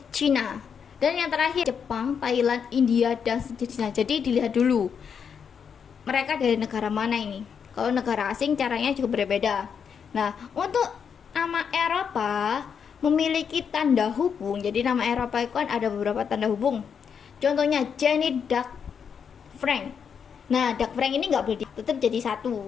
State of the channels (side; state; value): right; quieter; 7.0 dB